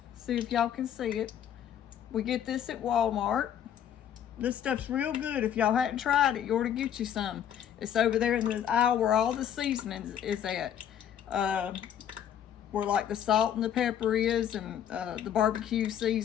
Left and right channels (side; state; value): right; quieter; 9.7 dB